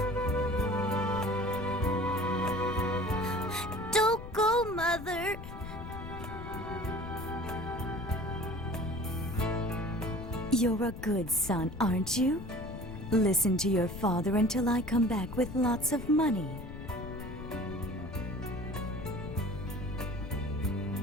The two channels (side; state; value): left; noise; rumble, 10 dB below the sound